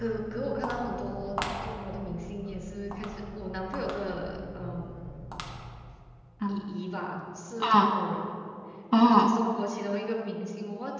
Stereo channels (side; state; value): both; identical; correlation 1.00